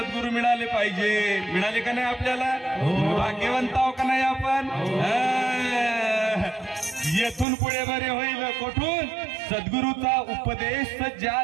मिळाले पाहिजे. मिळाले का नाही आपल्याला? भाग्यवंत आहोत का नाही आपण? येथून पुढे बरे होईल. कुठून? सद्गुरूचा उपदेश ज्या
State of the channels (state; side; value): drops out; left; at 7.5 s